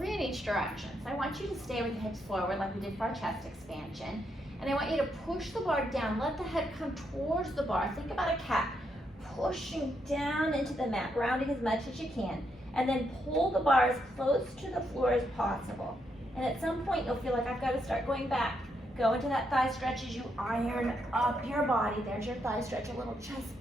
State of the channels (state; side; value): normal; both; correlation 0.79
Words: in each direction. So I want you to stay with the hips forward like we did for our chest expansion. And I want you to push the bar down. Let the head come towards the bar. Think about a cat pushing down into the mat, rounding as much as you can. And then pull the bar as close to the floor as possible. And at some point you'll feel like I've got to start going back. Go into that thigh stretch as you iron up your body. There's your thigh stretch, a little chest